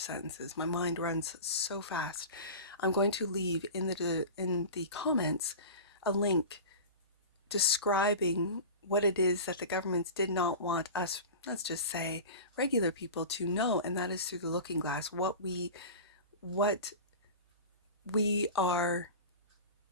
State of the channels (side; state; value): both; inverted; correlation -0.32